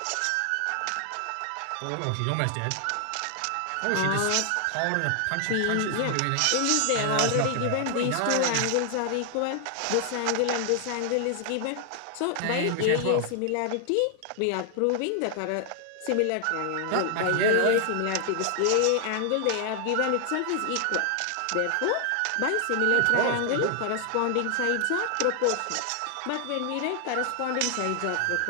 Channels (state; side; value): different; both; correlation 0.00